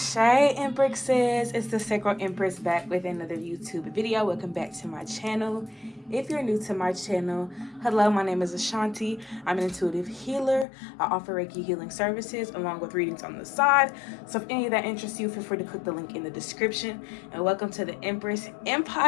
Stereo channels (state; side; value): drops out; right; at 10.7 s